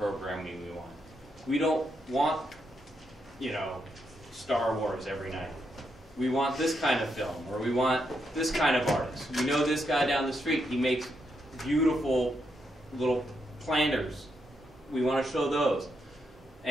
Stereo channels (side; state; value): both; normal; correlation 0.80